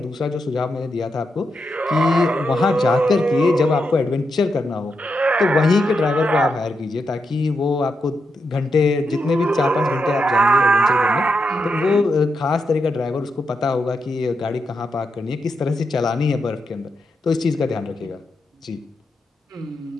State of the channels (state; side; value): normal; both; correlation 0.84